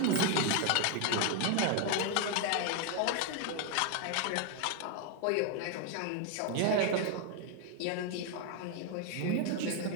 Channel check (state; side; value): different; both; correlation 0.01